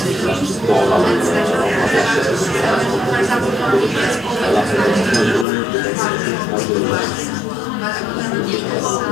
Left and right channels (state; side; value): drops out; right; at 5.5 s